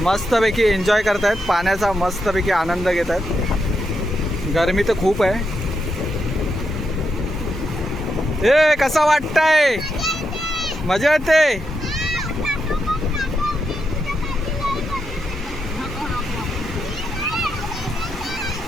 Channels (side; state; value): both; normal; correlation 0.83